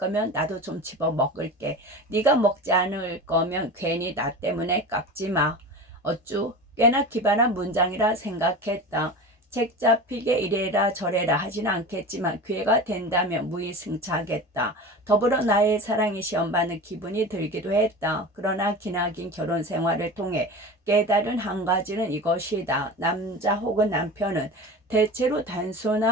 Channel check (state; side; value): normal; both; correlation 0.31